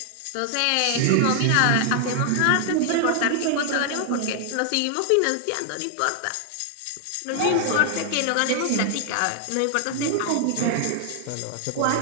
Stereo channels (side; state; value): both; different; correlation 0.00